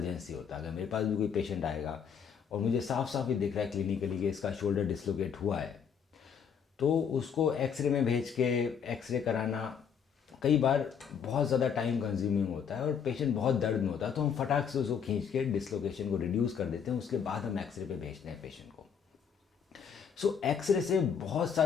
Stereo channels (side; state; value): right; quieter; 7.2 dB